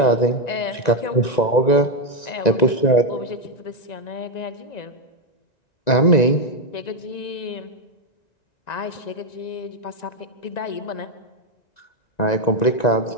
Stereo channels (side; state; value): right; late; 1.9 ms